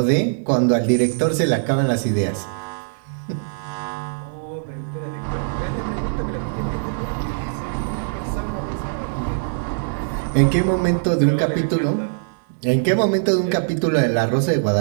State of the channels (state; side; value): silent; left; digital silence